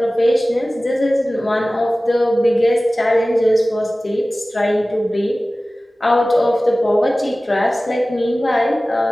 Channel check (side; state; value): both; normal; correlation 0.97